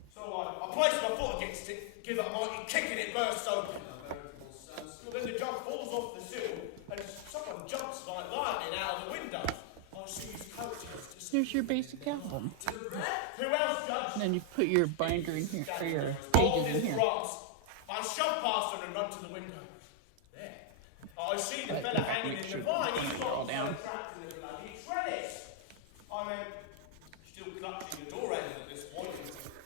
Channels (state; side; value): different; both; correlation 0.00